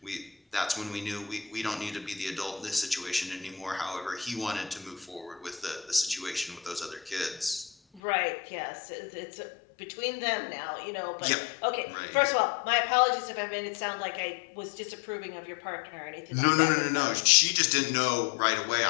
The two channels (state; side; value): drops out; right; at 8.0 s